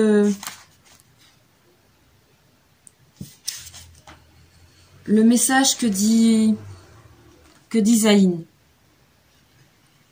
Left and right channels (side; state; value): both; identical; correlation 1.00